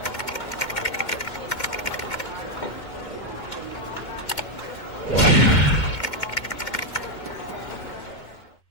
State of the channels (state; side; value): late; right; 2.2 ms